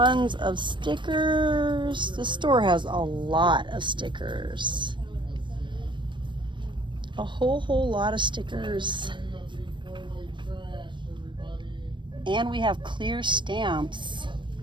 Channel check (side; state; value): left; late; 0.23 ms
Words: of stickers. The store has a lot of stickers. A whole lot of stickers. And we have clear stamps.